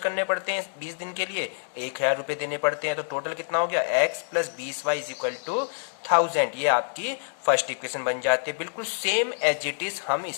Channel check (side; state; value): right; silent; digital silence